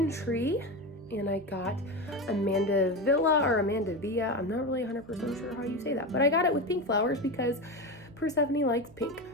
tree and I got Amanda Villa or Amanda Villa. I'm not really 100% sure how you say that, but I got it with pink flowers because Persephone likes pink.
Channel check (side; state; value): right; noise; hum, 23 dB below the sound